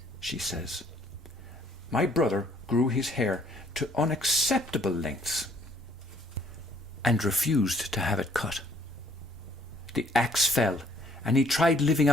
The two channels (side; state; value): both; normal; correlation 0.62